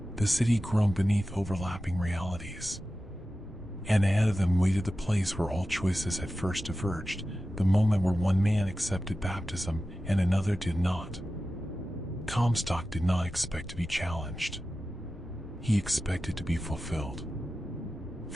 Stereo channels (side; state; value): both; normal; correlation 0.94